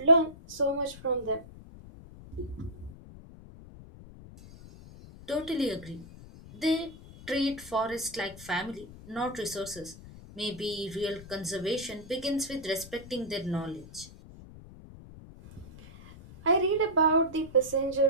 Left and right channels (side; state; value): left; noise; rumble, 17 dB below the sound